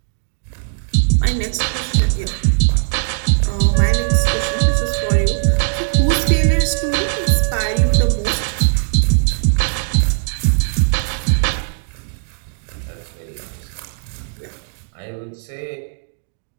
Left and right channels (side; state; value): left; silent; 67 dB below the other